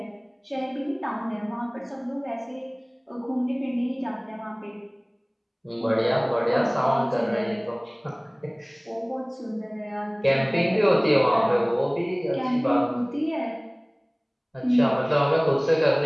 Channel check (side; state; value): both; identical; correlation 1.00